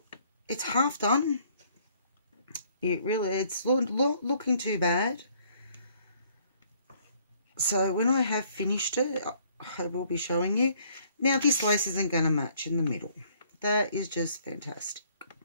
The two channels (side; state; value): both; inverted; correlation -0.62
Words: it's half done. It's looking too bad. So when I have finished it, I will be showing you. Now this lace isn't going to match in the middle. That is just fantastic.